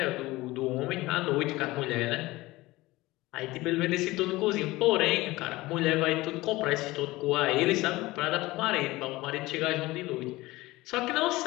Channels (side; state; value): right; quieter; 19.6 dB